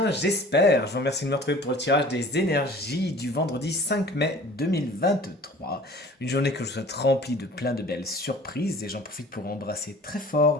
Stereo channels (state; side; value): normal; both; correlation 0.46